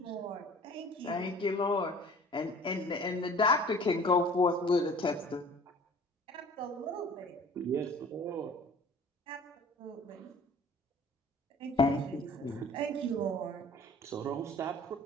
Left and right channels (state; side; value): normal; both; correlation 0.48